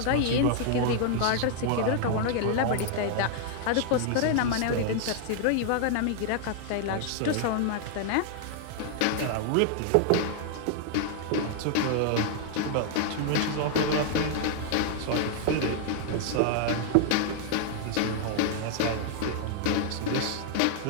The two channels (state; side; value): different; both; correlation 0.00